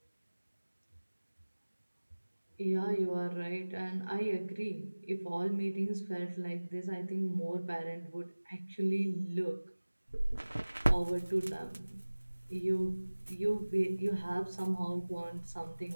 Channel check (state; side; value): inverted; both; correlation -1.00